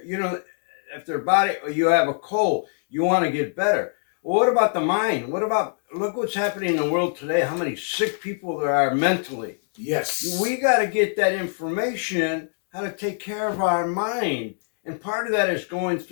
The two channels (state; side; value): silent; right; digital silence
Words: if their body, or you have a cold, you want to get better. Well, what about the mind? Look what's happening in the world today, how many sick people there are mentally. Yes. We got to get that information, how to take care of our mind. And part of that is going